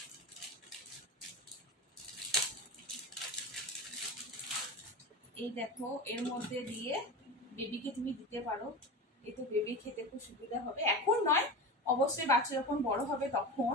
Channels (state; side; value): normal; both; correlation 0.27